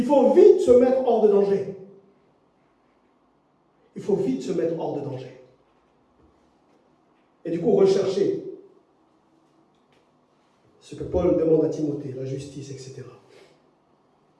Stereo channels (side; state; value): both; identical; correlation 1.00